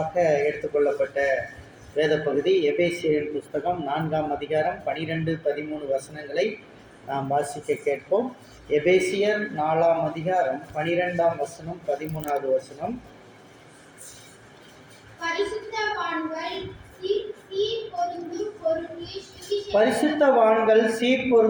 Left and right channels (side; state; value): both; identical; correlation 1.00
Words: எடுத்துக்கொள்ளப்பட்ட வேத பகுதி எபேசியரின் புஸ்தகம் 4ஆம் அதிகாரம் 12-13 வசனங்களை நாம் வாசிக்க கேட்போம். எபேசியர் 4ஆம் அதிகாரம் 12ஆம் வசனம் 13வது வசனம். பரிசுத்தவான்கள் சீர்